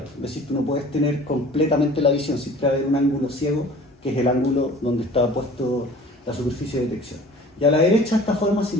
Es decir, tú no puedes tener completamente la visión, siempre va a haber un ángulo ciego, que es el ángulo donde está puesto la superficie de detección. Y a la derecha, esta forma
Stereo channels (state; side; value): normal; both; correlation 0.46